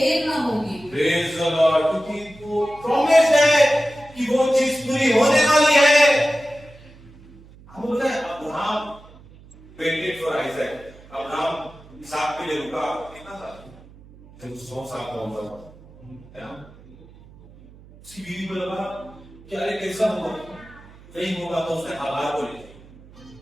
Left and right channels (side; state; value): right; noise; hum, 22 dB below the sound